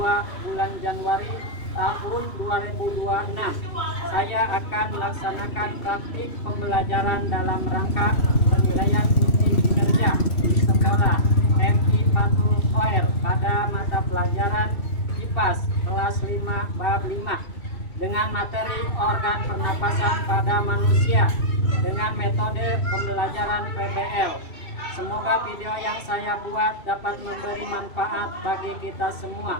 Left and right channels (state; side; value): late; right; 2.7 ms